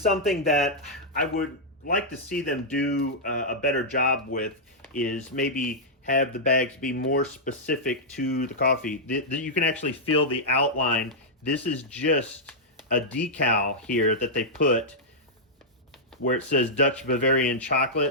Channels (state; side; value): normal; both; correlation -0.08